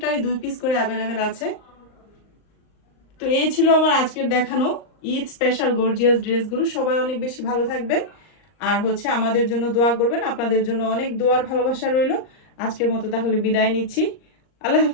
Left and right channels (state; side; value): late; right; 39 ms